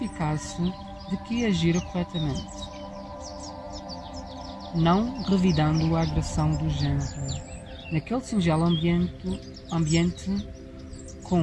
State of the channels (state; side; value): identical; both; correlation 1.00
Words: de que agira corretamente, não revidando a agressão do género. Naquele singelo ambiente